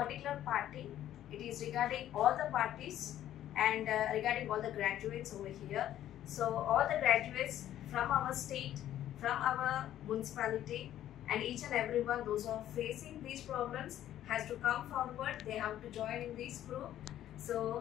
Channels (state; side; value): quieter; right; 12.1 dB